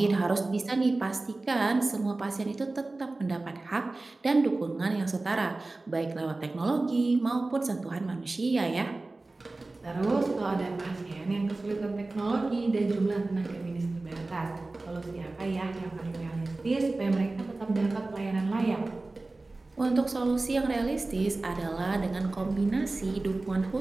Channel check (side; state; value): left; quieter; 3.2 dB